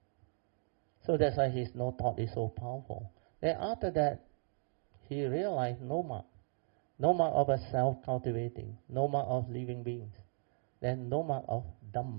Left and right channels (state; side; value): silent; left; 53 dB below the other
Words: So that's why his no thought is so powerful. Then after that, he realized no mark of a self-cultivating, no mark of living beings. Then no mark of